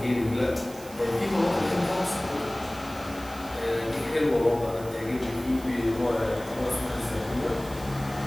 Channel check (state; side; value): noise; right; hiss, 18 dB below the sound